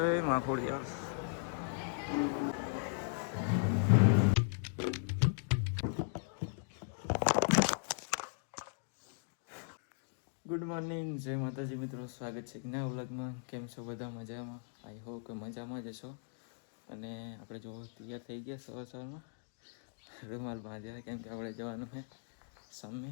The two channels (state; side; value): silent; right; digital silence